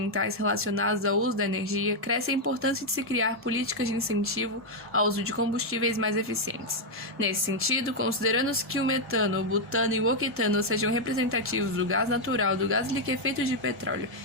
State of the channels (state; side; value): normal; both; correlation -0.01